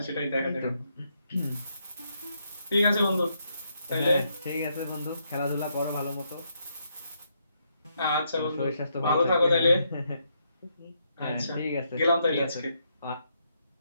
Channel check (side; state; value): both; inverted; correlation -0.77